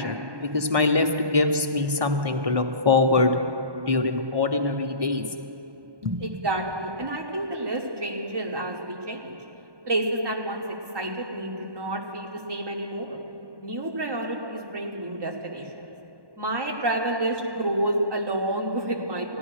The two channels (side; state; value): left; late; 1.2 ms